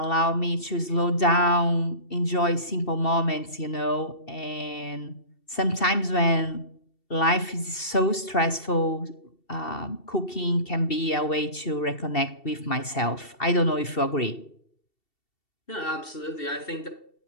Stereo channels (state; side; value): late; right; 2.7 ms